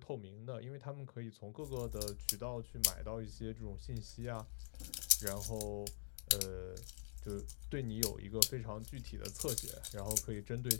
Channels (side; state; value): right; silent; digital silence